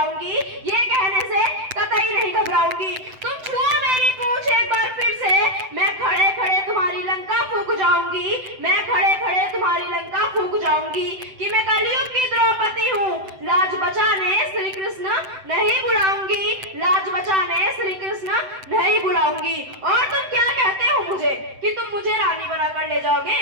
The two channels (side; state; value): left; late; 7.8 ms